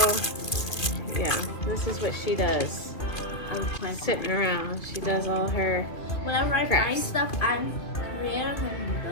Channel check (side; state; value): right; late; 2.5 ms